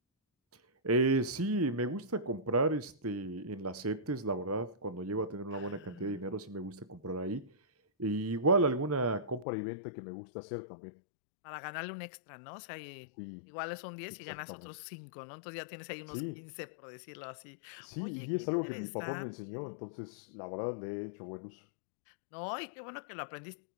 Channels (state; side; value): drops out; right; at 9.5 s